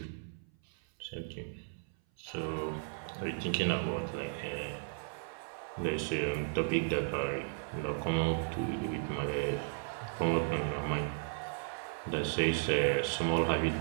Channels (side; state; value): left; silent; 54 dB below the other